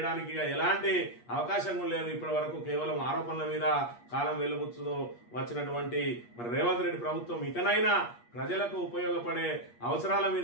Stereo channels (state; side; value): late; right; 8.4 ms